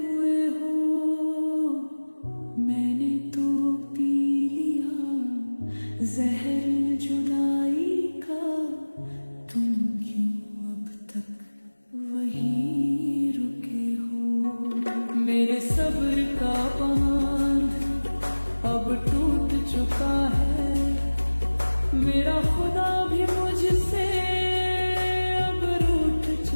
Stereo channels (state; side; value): inverted; both; correlation -1.00